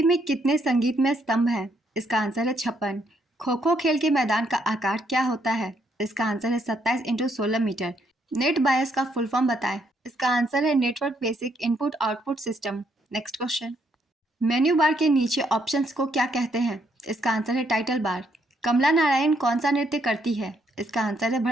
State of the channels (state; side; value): normal; both; correlation 0.73